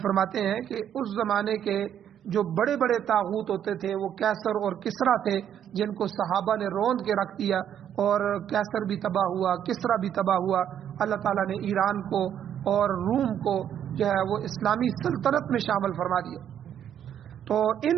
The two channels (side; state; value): left; quieter; 9.7 dB